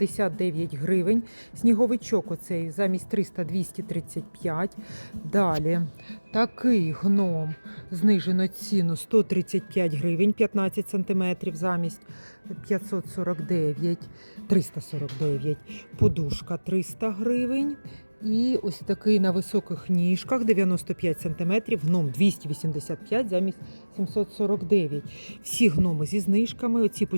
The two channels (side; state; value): both; inverted; correlation -1.00